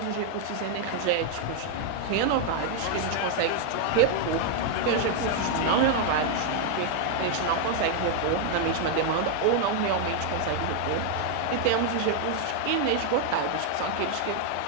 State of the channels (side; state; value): both; different; correlation 0.00